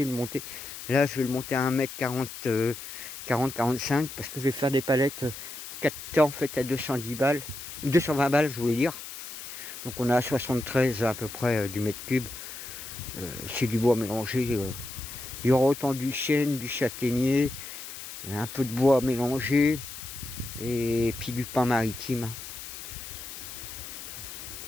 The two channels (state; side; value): noise; left; hiss, 11 dB below the sound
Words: Là, je vais le monter à 1m40, 40-45 parce que je vais faire des palettes 4 en fait à 210 balles. 220 balles, je voulais dire. Donc on a à 73 à peu près du mètre cube. C'est du bois mélangé. Il y aura autant du chêne, du châtaignier, un peu de bois mélangé et puis du pin maritime.